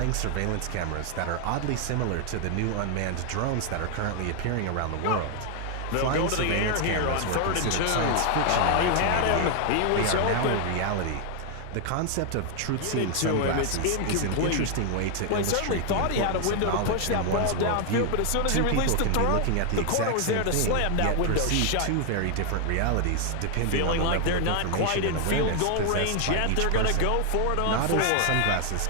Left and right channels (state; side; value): different; both; correlation 0.00